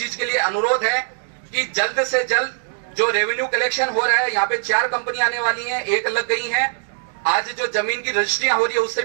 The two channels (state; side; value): silent; left; 65 dB below the other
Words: के लिए अनुरोध है कि जल्द से जल्द जो रेवेन्यू कलेक्शन हो रहा है, यहाँ पे 4 कंपनी आने वाली हैं, 1 लग गई हैं। आज जो जमीन की रजिस्ट्रियां हो रही है उससे